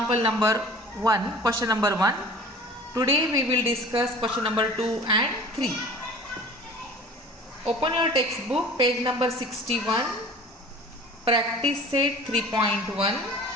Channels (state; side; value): normal; both; correlation 0.43